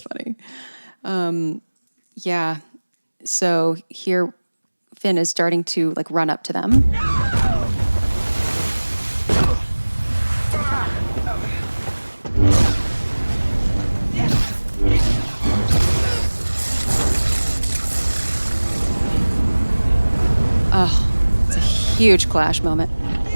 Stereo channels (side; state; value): both; inverted; correlation -1.00